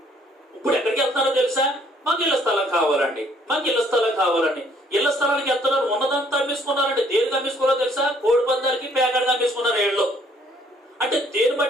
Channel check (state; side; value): normal; both; correlation 0.63